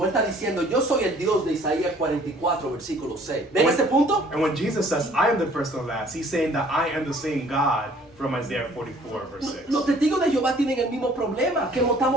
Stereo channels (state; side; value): normal; both; correlation 0.56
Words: él está diciendo, yo soy el Dios de Isaías 44, versículo 6. ¿Ven ese punto? And when Jesus says, I am the first and the last, he's saying that I am the same God from Isaiah 44, verse 6. Los testigos de Jehová tienen el mismo problema que